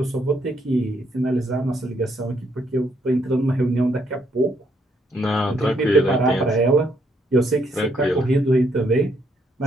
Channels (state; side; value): normal; both; correlation 0.72